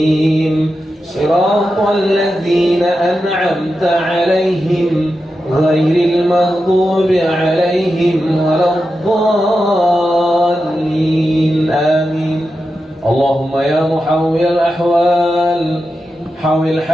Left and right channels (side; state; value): both; normal; correlation 0.90